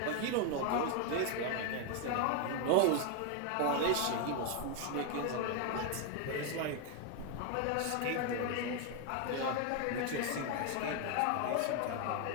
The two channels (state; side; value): different; both; correlation 0.01